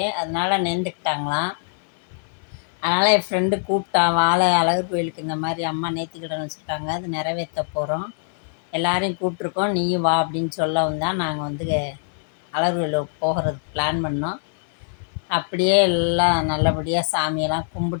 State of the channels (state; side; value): silent; right; 64 dB below the other